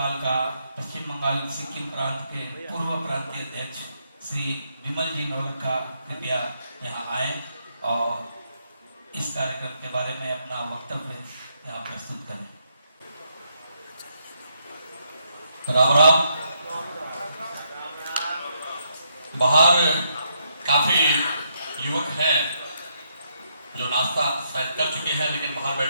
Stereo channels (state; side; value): inverted; both; correlation -0.76